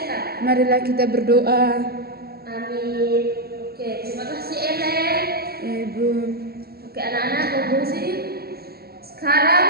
Marilah kita berdoa. Amin. Oke, terima kasih Ellen. Ya Ibu. Oke anak-anak konklusi. Sekarang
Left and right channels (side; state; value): left; late; 0.45 ms